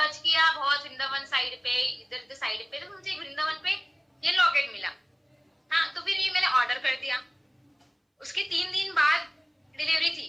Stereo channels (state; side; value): identical; both; correlation 1.00